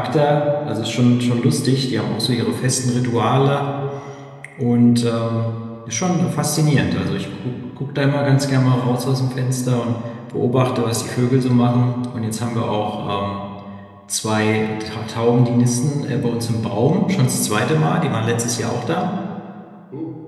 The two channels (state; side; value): identical; both; correlation 1.00